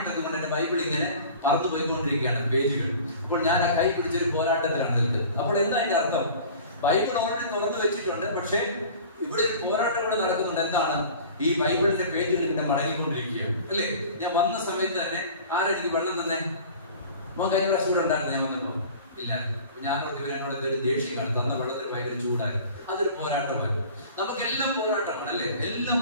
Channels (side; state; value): both; inverted; correlation -0.43